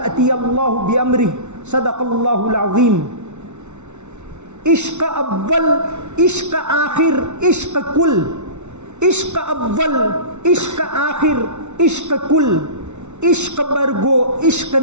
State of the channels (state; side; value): late; left; 0.82 ms